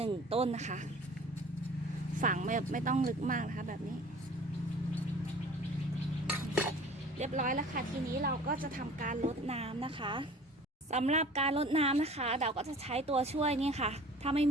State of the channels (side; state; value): both; normal; correlation 0.46